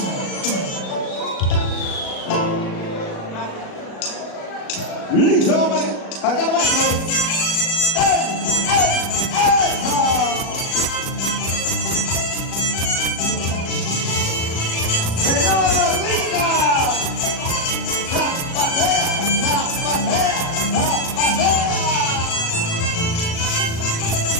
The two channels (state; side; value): late; right; 37 ms